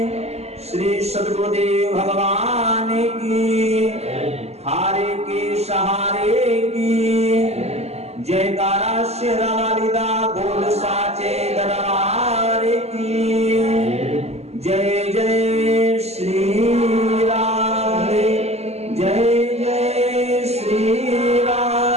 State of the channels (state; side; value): late; left; 0.30 ms